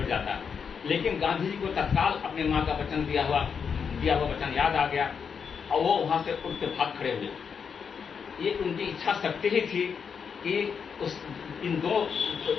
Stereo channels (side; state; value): right; quieter; 6.5 dB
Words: जाता। लेकिन गांधी जी को तत्काल अपनी माँ का वचन दिया हुआ वचन याद आ गया, और वो वहां से उठ के भाग खड़े हुए। ये उनकी इच्छा शक्ति ही थी कि इन 2